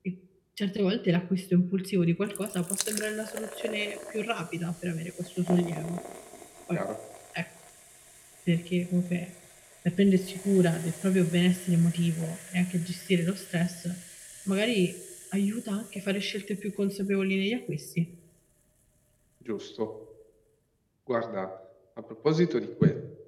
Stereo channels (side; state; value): both; identical; correlation 1.00